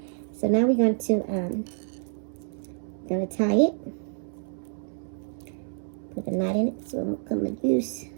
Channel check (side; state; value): left; silent; 59 dB below the other